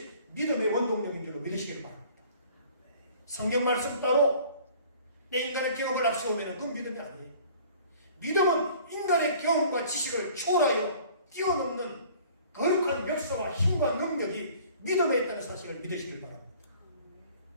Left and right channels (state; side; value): inverted; both; correlation -0.51